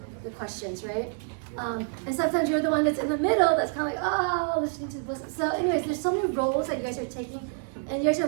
the questions, right? And sometimes you're the one that's in the middle that's kind of like, oh, listening to the listen. So anyways, there's so many roles that you guys are taking, and you guys are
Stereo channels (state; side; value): silent; left; 60 dB below the other